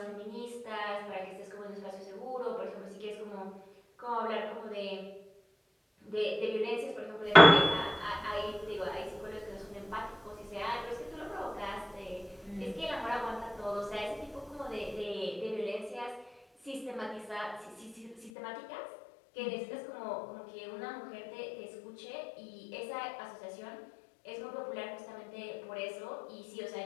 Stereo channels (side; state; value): right; drops out; at 18.3 s